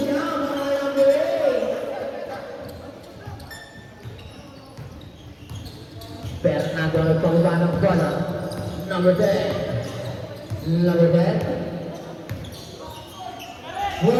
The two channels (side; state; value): both; identical; correlation 1.00